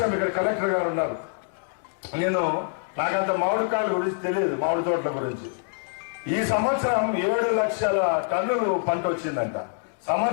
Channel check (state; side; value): silent; right; digital silence